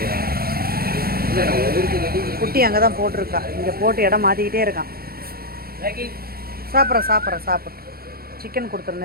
குட்டி அங்கே தான் போட்டிருக்கா. இங்கே போட்டு இடம் மாற்றிக்கிட்டே இருக்கான். சாப்பிட்ற சிக்கன்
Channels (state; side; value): late; left; 0.44 ms